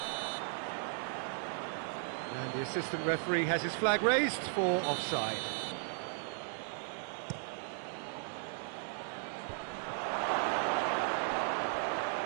And the assistant referee has his flag raised for offside.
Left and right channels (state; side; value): silent; left; 54 dB below the other